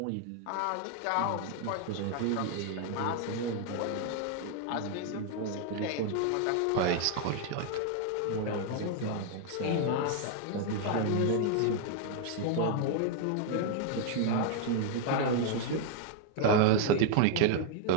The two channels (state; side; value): different; both; correlation 0.00